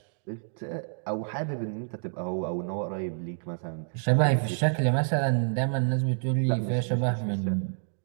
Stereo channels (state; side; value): silent; left; digital silence